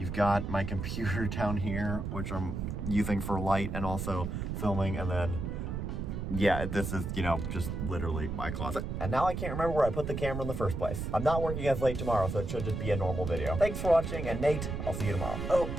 got my computer down here, which I'm using for light and also filming, and then yeah, this is, you know, just literally my closet. And now I can't remember where I put the camera in the first place. I'm not working as late tomorrow, so it should just be a normal video. Thanks for watching, and Nate, I'll see you tomorrow. Oh,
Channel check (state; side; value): noise; right; rumble, 4 dB below the sound